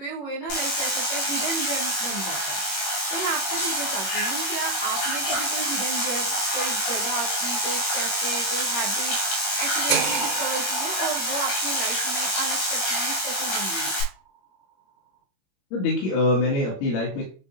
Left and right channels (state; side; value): late; right; 21 ms